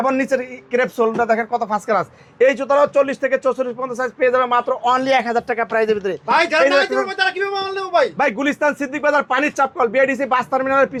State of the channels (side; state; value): both; identical; correlation 1.00